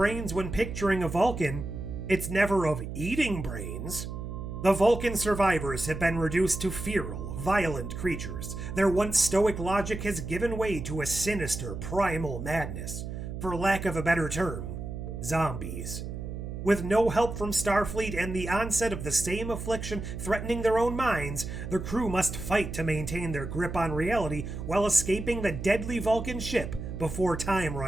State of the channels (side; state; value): right; noise; hum, 7 dB below the sound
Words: when picturing a Vulcan, it's never of eating brains. The Vulcan survivors have been reduced to feral, violent creatures. Their once stoic logic has given way to a sinister, primal madness. For lack of a better term, zombies. With no help from Starfleet and the onset of the same affliction threatening their own minds, the crew must fight to maintain their grip on reality while escaping the deadly Vulcan ship before time